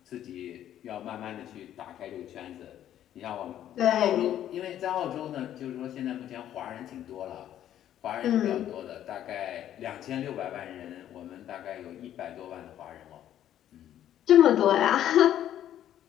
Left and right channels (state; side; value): quieter; right; 11.4 dB